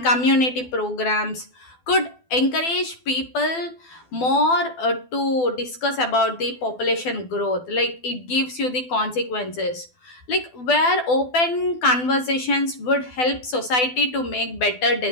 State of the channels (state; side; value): late; right; 12 ms